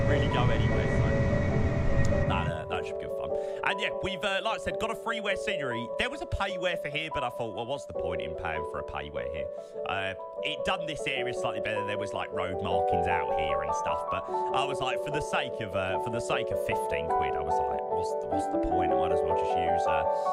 And yeah, we've, like I said, got a freeware scenery. There was a payware for here, but I thought, well, what's the point in paying for a payware here? It done this area slightly better. There was like road markings out here and stuff, but I was like, for the sake of 15 quid, I was like, what's the point? I might as well just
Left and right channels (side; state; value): both; identical; correlation 1.00